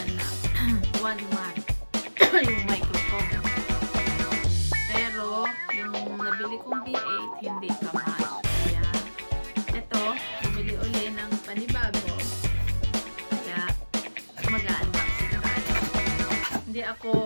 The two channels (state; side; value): inverted; both; correlation -1.00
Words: na 1 month yung microphone. Pero, yung nabili kong V8, hindi ka match. Kaya, ito, bumili uli ng panibago. Kaya, mag-unboxing tayo. Hindi